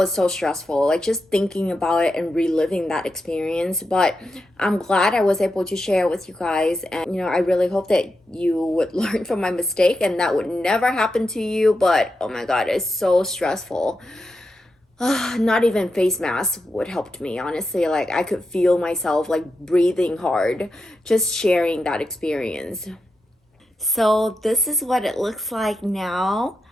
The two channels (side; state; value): both; normal; correlation 0.87